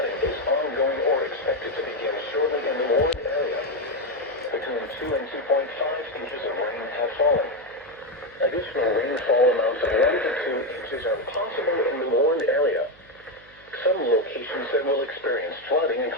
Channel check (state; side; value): noise; right; hum, 27 dB below the sound